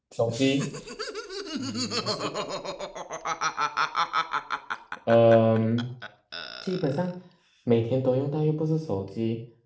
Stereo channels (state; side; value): identical; both; correlation 1.00